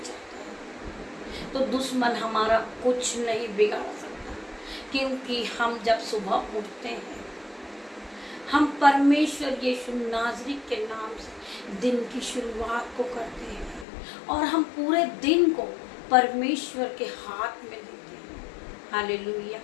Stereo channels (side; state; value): right; drops out; at 13.9 s